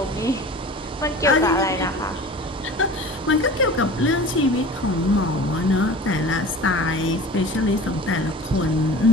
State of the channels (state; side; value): normal; both; correlation 0.38